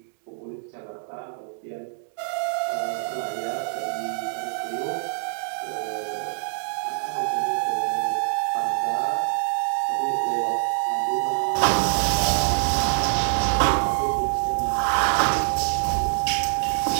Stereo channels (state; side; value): silent; left; digital silence